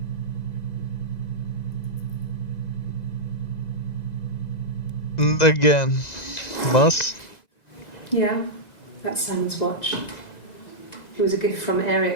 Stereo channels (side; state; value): right; late; 2.0 ms